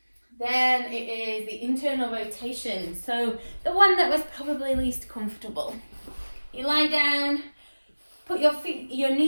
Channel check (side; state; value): both; inverted; correlation -1.00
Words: Then it is the internal rotation, so the one that was probably least comfortable. You lie down, put your